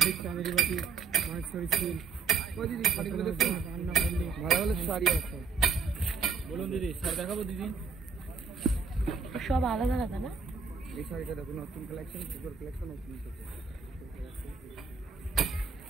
চাঁদেরি বাটি, মাহেশ্বরী সিল। দিদি শাড়িগুলো দেখুন, রান্না করলে ভালো ভালো শাড়ি আছে। বলুন দিদি, শাড়ি দেখাবো দিদি? সব আলাদা আলাদা না? এই শাড়িটা দেখুন, নতুন কালেকশন, সুপার কালেকশন নতুন।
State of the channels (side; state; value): left; quieter; 5.5 dB